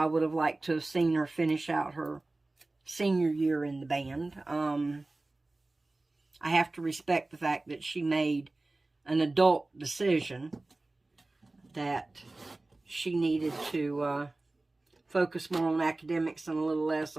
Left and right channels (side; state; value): left; quieter; 3.0 dB